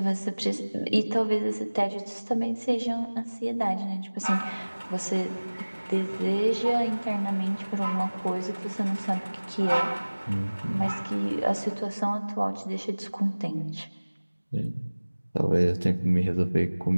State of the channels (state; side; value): inverted; both; correlation -1.00